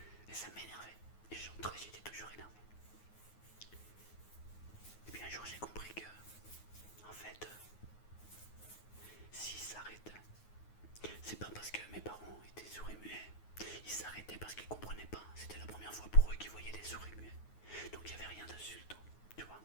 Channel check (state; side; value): late; right; 9.4 ms